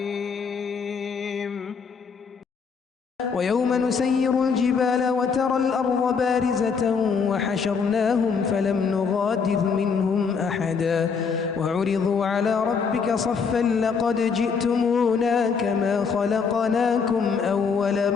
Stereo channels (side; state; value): right; quieter; 5.7 dB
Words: ويوم نسير الجبال وترى الأرض بارزة وحشرناهم فلم نغادر منهم أحدا وعرضوا على ربك صفا لقد جئتمونا كما خلقناكم أول